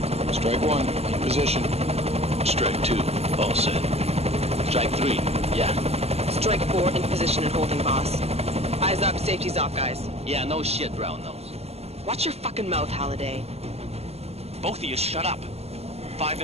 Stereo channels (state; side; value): late; left; 0.30 ms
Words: Strike 1, in position. Strike 2, all set. Strike 3, yeah. Strike 4 in position and holding, boss. Eyes up, safety's off, guys. Yeah, no shit, brown nose. Watch your fucking mouth, Halliday. Both of you shut up. 5